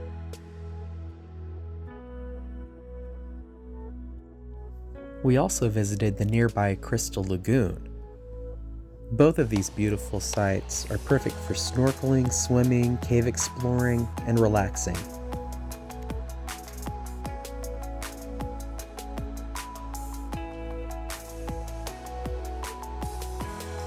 We also visited the nearby Crystal Lagoon. Both of these beautiful sites are perfect for snorkeling, swimming, cave exploring, and relaxing.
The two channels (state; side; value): identical; both; correlation 1.00